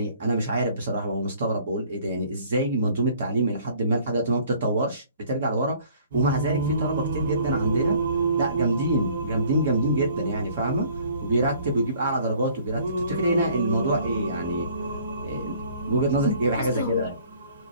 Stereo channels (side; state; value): both; inverted; correlation -0.56